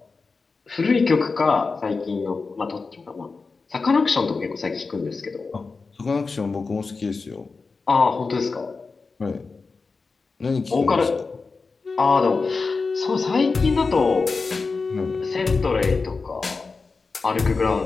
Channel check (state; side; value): quieter; right; 4.3 dB